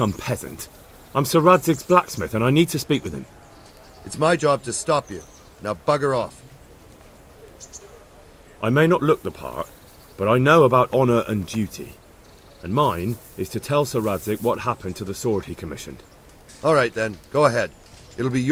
peasant. I'm Sir Radzig's blacksmith, and I need to speak with him. It's my job to stop you. Now bugger off. I may not look the part, but I know about honour and duty. And mine is to tell Sir Radzig what happened to the sword he commissioned. All right then, go ahead. It'll be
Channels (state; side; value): identical; both; correlation 1.00